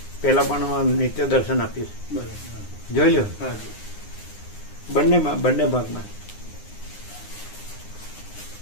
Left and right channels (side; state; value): right; late; 9.7 ms